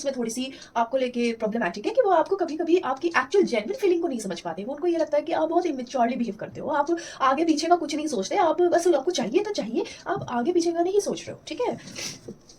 में थोड़ी सी आपको लेके प्रॉब्लमैटिक है कि वो आपको कभी कभी आपकी एक्चुअल जेन्युइन फीलिंग को नहीं समझ पाते। वो उनको ये लगता है कि आप बहुत इमेच्योरली बिहेव करते हो, आप आगे पीछे का कुछ नहीं सोचते, आप बस आपको चाहिए तो चाहिए, आप आगे पीछे का नहीं सोच रहे हो, ठीक है।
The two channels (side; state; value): both; identical; correlation 1.00